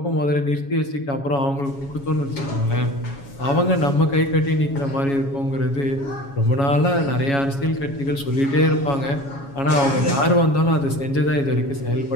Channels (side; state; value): right; late; 7.2 ms